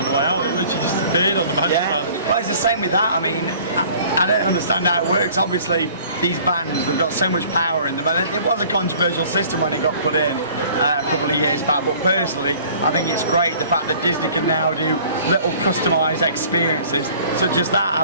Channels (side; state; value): both; inverted; correlation -0.51